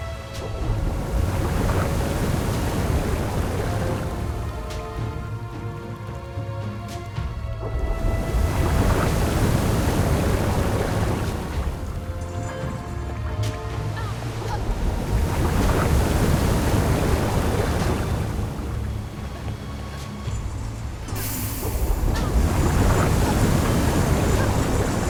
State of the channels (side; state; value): both; identical; correlation 1.00